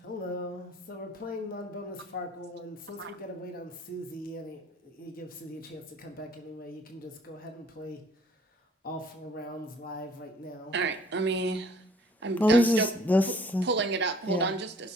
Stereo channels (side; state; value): both; normal; correlation 0.56